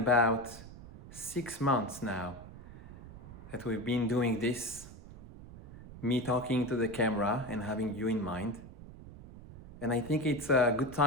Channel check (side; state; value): right; noise; rumble, 15 dB below the sound